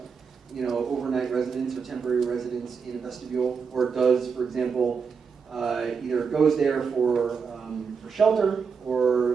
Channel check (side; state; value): left; quieter; 5.8 dB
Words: overnight residence or temporary residence in a vestibule, or does, for example, either goes there for shelter,